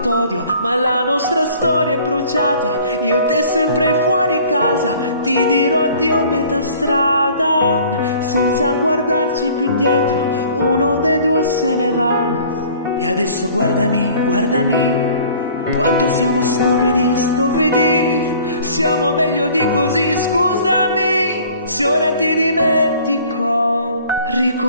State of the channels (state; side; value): inverted; both; correlation -0.51